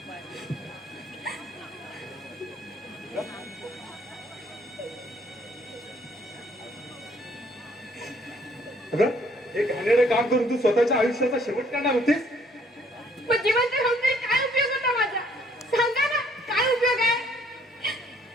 अगं हे घाणेरडं काम करून तू स्वतःच्या आयुष्याचा शेवट करणार होतीस? पण जिवंत राहून तरी काय उपयोग होता माझा? सांगा ना, काय उपयोग आहे?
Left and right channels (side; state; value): both; normal; correlation 0.63